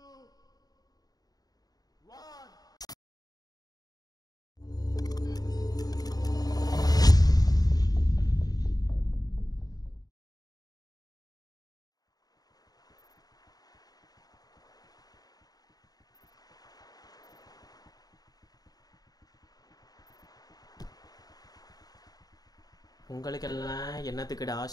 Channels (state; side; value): late; right; 0.18 ms